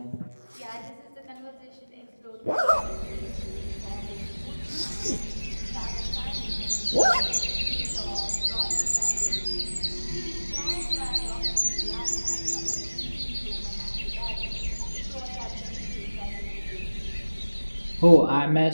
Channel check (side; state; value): both; inverted; correlation -1.00